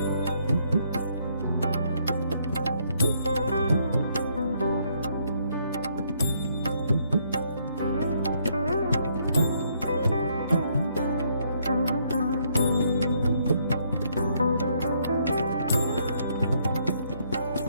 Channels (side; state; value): both; inverted; correlation -0.71